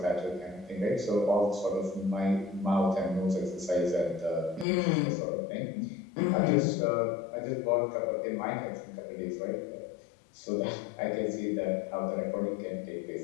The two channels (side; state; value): right; drops out; at 4.7 s